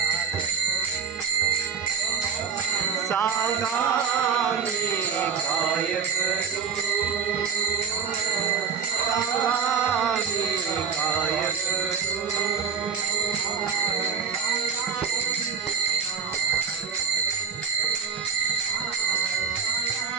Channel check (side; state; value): left; quieter; 6.7 dB